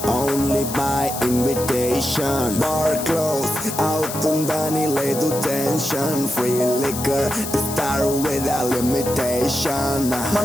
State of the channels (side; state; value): left; noise; hiss, 8 dB below the sound